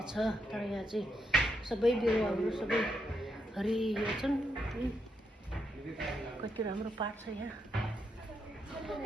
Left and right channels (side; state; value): both; normal; correlation 0.80